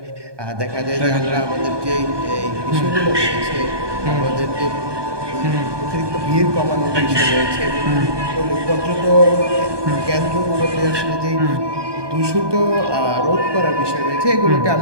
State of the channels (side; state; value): left; late; 1.2 ms